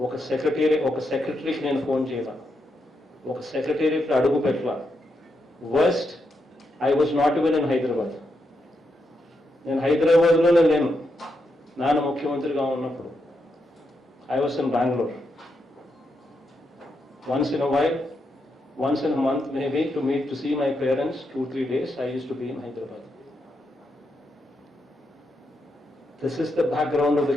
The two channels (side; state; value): both; normal; correlation 0.83